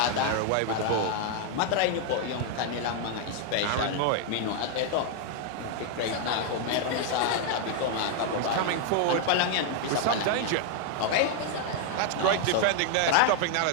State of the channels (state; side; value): different; both; correlation 0.00